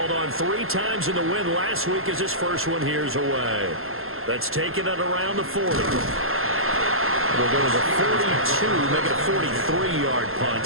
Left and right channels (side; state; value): left; late; 0.61 ms